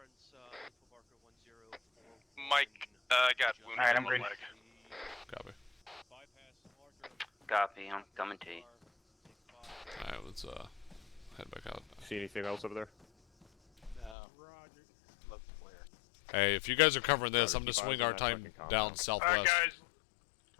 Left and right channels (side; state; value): right; drops out; at 14.2 s